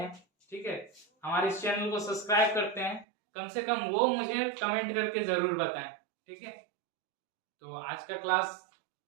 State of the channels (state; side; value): drops out; left; at 3.1 s